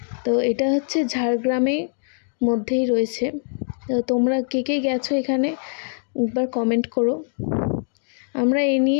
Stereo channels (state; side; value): silent; right; digital silence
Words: তো এটা হচ্ছে ঝাড়গ্রামের মধ্যেই রয়েছে। তো তোমরা কে কে গেছো এখানে একবার কমেন্ট করো। আমরা এই